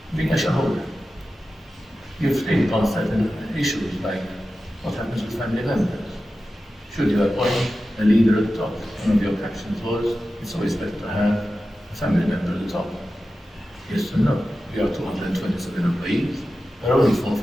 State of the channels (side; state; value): both; normal; correlation 0.93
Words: being a shareholder. You've think on certain issues like what happens with family members. Should you appoint a leader at the top? One of your captions was, it's always better to have a family member at the top. Yes or no? We are 227 employees. There are only 4